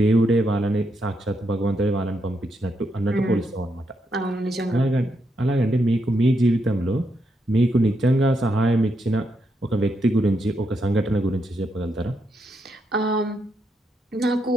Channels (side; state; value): both; normal; correlation 0.80